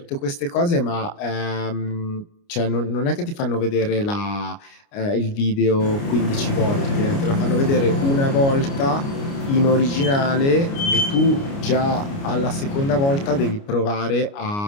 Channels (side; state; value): right; late; 29 ms